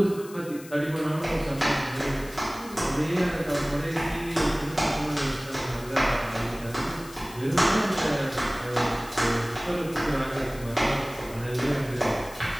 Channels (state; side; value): noise; left; hiss, 18 dB below the sound